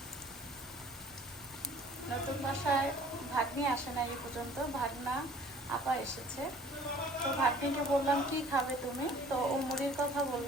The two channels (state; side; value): normal; both; correlation 0.51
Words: নতুন বাসায় ভাগ্নি আসে না এই পর্যন্ত, ভাগনা আপা এসেছে। তো ভাগ্নিকে বললাম কি খাবে তুমি, তো ও মুড়ির কথা